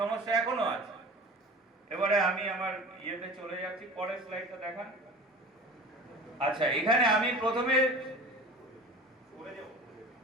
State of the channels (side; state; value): both; normal; correlation 0.38